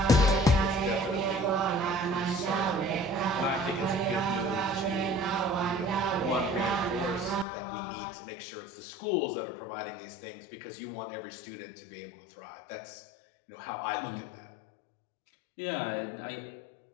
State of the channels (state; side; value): drops out; right; at 7.5 s